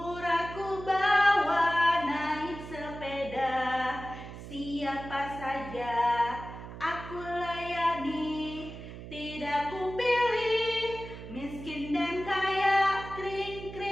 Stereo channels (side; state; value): right; noise; hum, 12 dB below the sound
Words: bawa naik sepeda. Siapa saja aku layani, tidak kupilih miskin dan kaya, kring